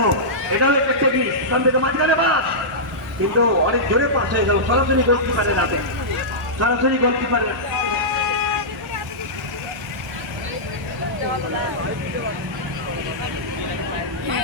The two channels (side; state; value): both; normal; correlation -0.14